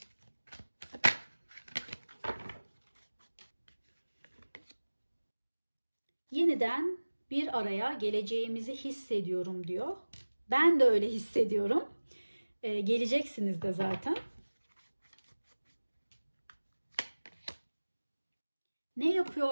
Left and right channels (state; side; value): inverted; both; correlation -1.00